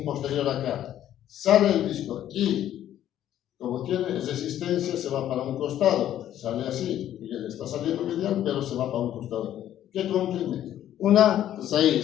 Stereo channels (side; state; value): right; quieter; 11.7 dB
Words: posterior acá, sale el disco y, como tiene resistencia, se va para un costado, sale así, y él está saliendo medial, pero se va para un costado. ¿Qué comprime? Una